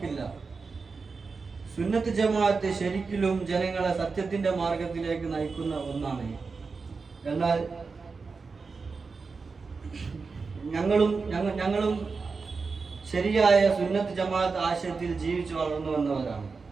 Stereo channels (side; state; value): left; quieter; 4.6 dB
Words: സുന്നത്ത് ജമാഅത്ത് ശരിക്കും ജനങ്ങളെ സത്യത്തിന്റെ മാർഗത്തിലേക്ക് നയിക്കുന്ന ഒന്നാണ്. എന്നാൽ ഞങ്ങളും ശരിയായ സുന്നത്ത് ജമാഅത്ത് ആശയത്തിൽ ജീവിച്ചു വളർന്നു വന്നവരാണ്.